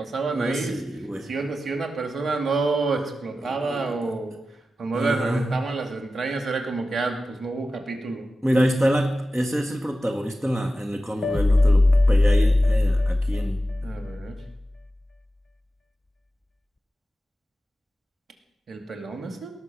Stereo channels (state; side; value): normal; both; correlation 0.93